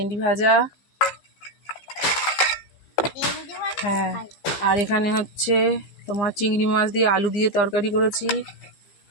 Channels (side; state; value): right; late; 15 ms